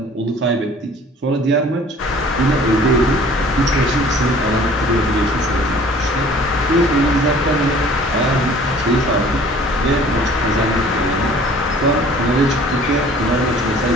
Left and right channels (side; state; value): both; normal; correlation 0.50